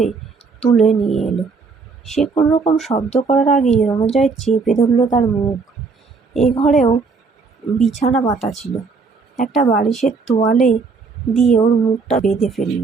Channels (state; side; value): quieter; left; 4.6 dB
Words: তুলে নিয়ে এলো। সে কোনো রকম শব্দ করার আগেই রণজয় চেপে ধরল তার মুখ। এ ঘরেও বিছানা পাতা ছিল। একটা বালিশের তোয়ালে দিয়ে ওর মুখটা বেঁধে ফেলল।